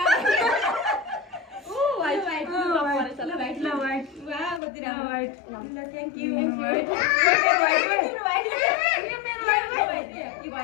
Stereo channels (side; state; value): right; drops out; at 4.6 s